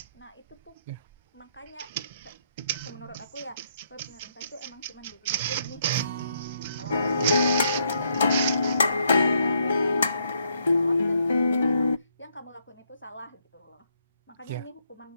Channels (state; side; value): inverted; both; correlation -0.74